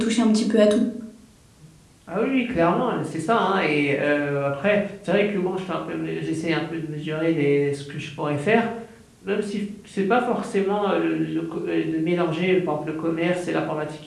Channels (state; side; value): identical; both; correlation 1.00